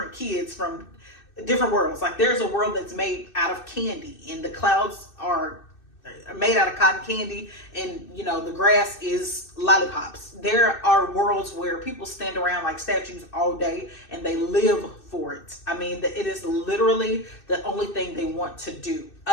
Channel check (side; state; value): right; late; 2.6 ms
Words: kids from different worlds. Like there's a world that's made out of candy, and the clouds are made out of cotton candy, and you know the grass is lollipops. There are worlds where people stand around like statues all day and they live for it. I mean, it is literally the only thing they want to do.